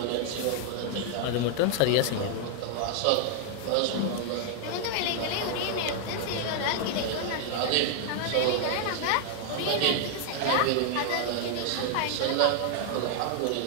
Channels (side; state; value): both; different; correlation 0.00